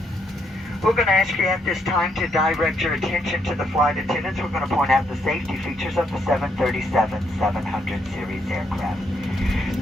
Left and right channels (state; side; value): normal; both; correlation 0.74